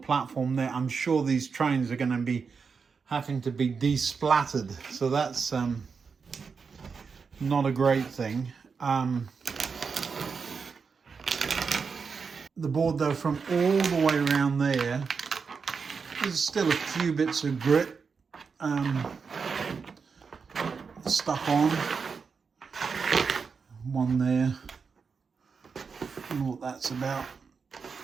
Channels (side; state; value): left; quieter; 5.4 dB